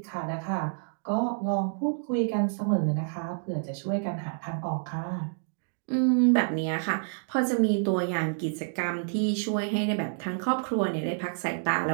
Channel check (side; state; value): left; silent; digital silence